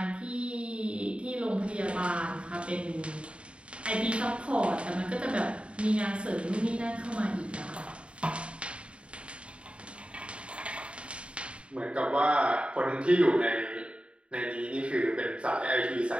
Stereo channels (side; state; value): left; late; 0.058 ms